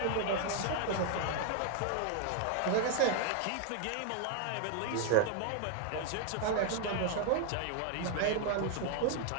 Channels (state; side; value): different; both; correlation 0.01